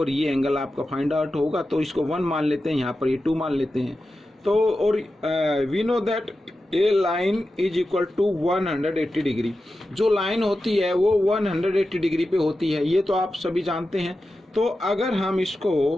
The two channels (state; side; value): normal; both; correlation 0.92